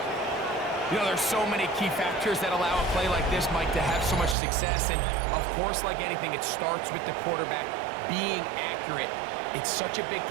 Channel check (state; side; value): drops out; left; at 4.4 s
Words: You know, there's so many key factors that allow a play like this, Mike, to have so much success. And, of course, like anything, it starts with the quarterback being accurate. It's such a big